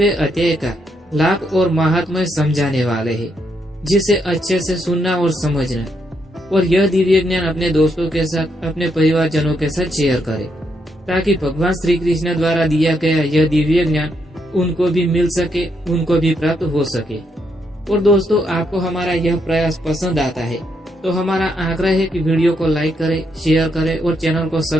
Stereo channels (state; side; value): normal; both; correlation 0.78